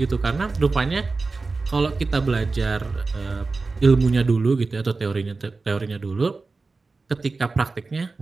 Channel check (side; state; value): left; quieter; 3.9 dB